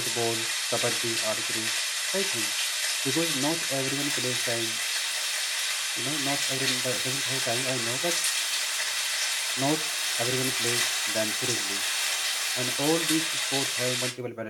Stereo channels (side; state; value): both; identical; correlation 1.00